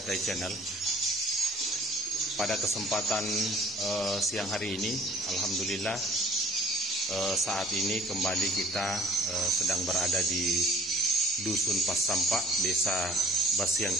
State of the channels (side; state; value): both; normal; correlation 0.52